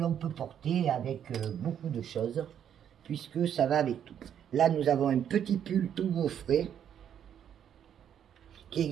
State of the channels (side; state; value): left; quieter; 9.2 dB